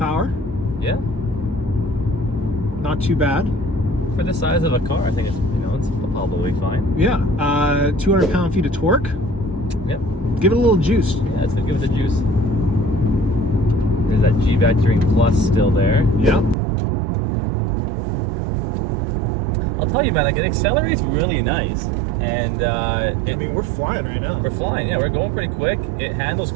Yeah. Not too bad. For the size of a car, I think it's it's probably fine. Yeah. 200 pound-feet of torque. Yep. Give it a little juice. Yeah, it's gonna give it the juice. There's that G-Vectoring Plus still there. Yeah. I'll tell you, man, like it accelerates really nice, and I mean, we're flying right now. We're flying. Yeah, we're going pretty quick. It handles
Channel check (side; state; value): left; drops out; at 16.6 s